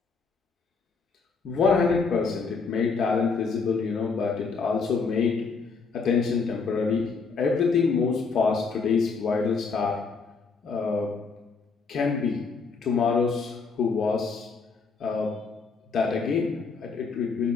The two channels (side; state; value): right; quieter; 4.8 dB